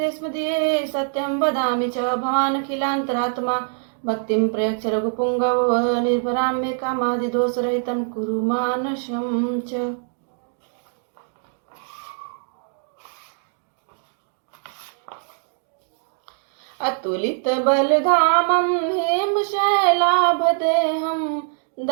सत्यं वदामि च भवानखिलान्तरात्मा भक्तिं प्रयच्छ रघुपुङ्गव निर्भरां मे कामादिदोषरहितं कुरु मानसं च। अतुलित बलधामं हेमशैलाभदेहं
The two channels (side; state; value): left; silent; digital silence